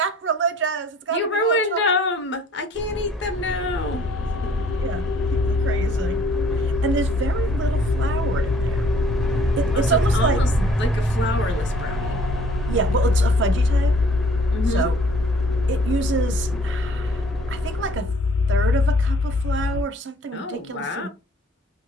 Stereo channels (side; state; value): both; normal; correlation 0.57